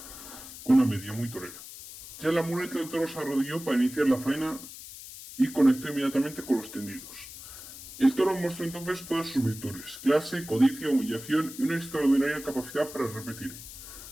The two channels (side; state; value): left; noise; hiss, 14 dB below the sound